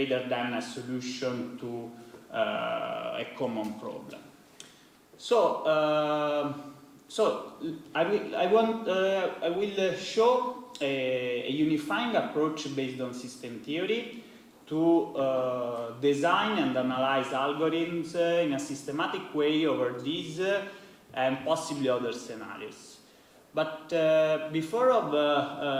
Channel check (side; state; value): both; identical; correlation 1.00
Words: than a solution to a common problem. So I will show a unifying approach based on system theory to design and analyze algorithms in a systematic way over these and possibly other scenarios. But before